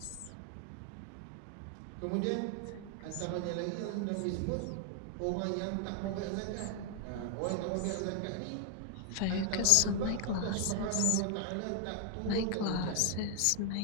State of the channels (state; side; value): different; both; correlation 0.00